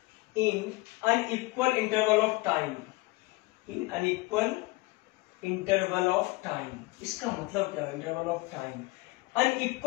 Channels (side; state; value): right; quieter; 22.7 dB